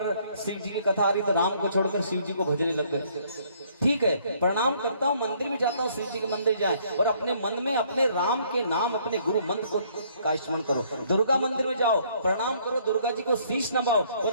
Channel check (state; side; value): inverted; both; correlation -0.64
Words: शिव जी की कथा आ रही तो राम को छोड़कर शिव जी को भजने लग गए। ठीक है, प्रणाम करता हूँ, मंदिर भी जाता हूँ, शिव जी के मंदिर जाए, और अपने मन में अपने राम के नाम, अपने गुरु मंत्र को का स्मरण करो। दुर्गा मंदिर में जाओ, प्रणाम करो, दुर्गा जी को शीश नवाओ,